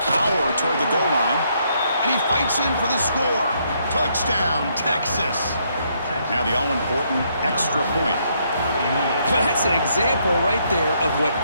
power toward the goal line. And he fights in for the score. Touchdown, Texas. Now the all-important extra point. Well, that's an example right there of what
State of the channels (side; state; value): both; inverted; correlation -0.73